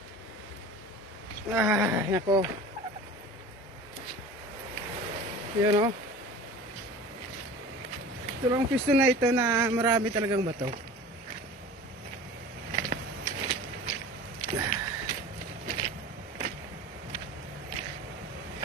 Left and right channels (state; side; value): normal; both; correlation 0.38